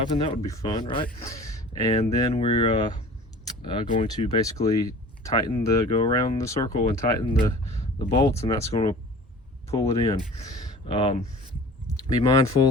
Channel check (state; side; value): normal; both; correlation 0.43